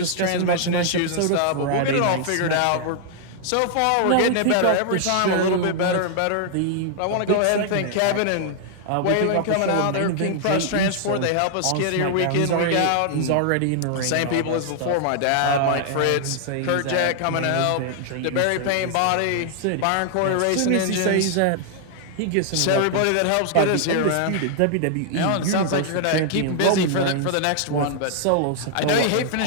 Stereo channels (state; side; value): different; both; correlation 0.00